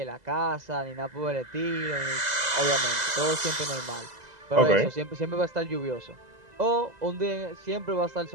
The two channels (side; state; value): left; late; 2.0 ms